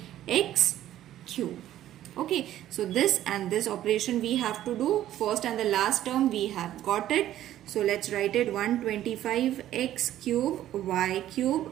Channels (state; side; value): quieter; left; 12.8 dB